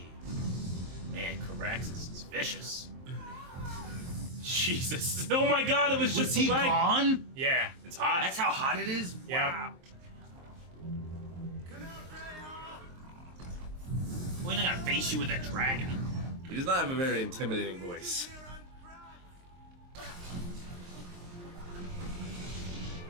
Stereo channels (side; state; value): left; late; 23 ms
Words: Man, Caraxes is vicious. Jesus. Oh my God, it was just Was he a leg. gone? Yeah. It's hot. That's how hot it is. Yep. Wow. Well, he's not gonna face you with a dragon. He does not have a very intimidating voice.